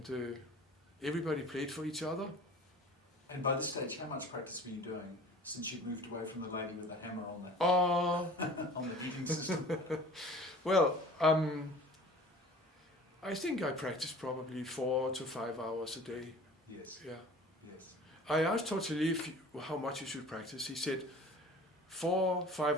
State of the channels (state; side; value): normal; both; correlation 0.44